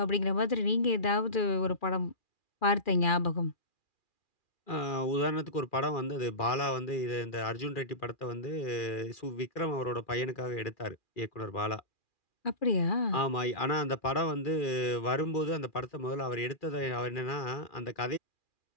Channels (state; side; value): late; right; 2.4 ms